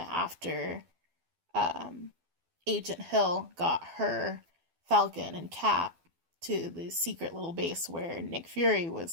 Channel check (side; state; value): left; late; 12 ms